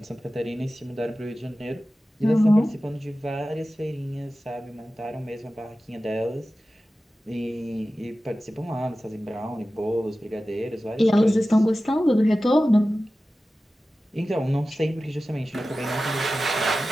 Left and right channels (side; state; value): both; normal; correlation 0.95